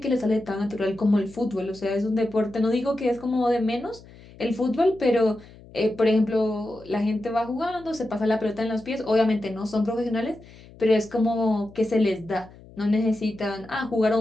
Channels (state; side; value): noise; left; hum, 21 dB below the sound